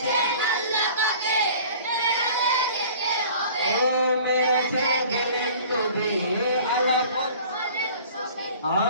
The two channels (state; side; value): inverted; both; correlation -0.46